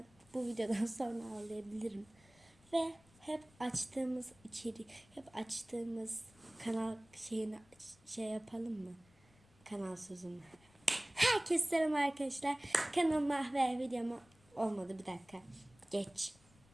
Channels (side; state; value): left; noise; rumble, 29 dB below the sound